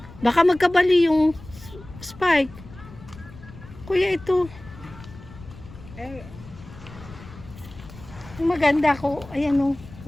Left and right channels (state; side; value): noise; left; rumble, 18 dB below the sound